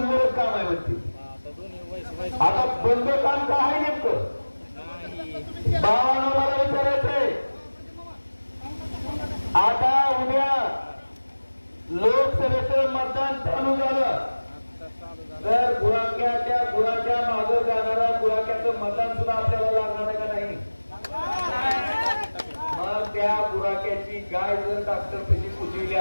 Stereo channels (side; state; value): both; inverted; correlation -1.00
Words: काम आहे म्हणते. आता बंद काम का आहे नेमकं? बाबांना मला विचारायचंय, आता उद्या लोकसभेचं मतदान चालू झालं तर गुराख्या मागं जाणारा गुराख्याचं मतदान सुद्धा आपल्याला लागणार आहे का नाही? मग त्या गुराख्याची गाय जर डॉक्टर कशी पुजविली